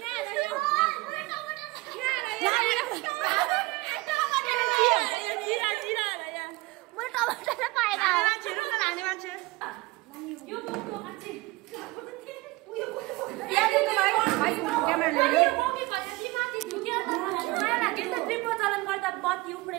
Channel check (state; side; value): quieter; left; 22.2 dB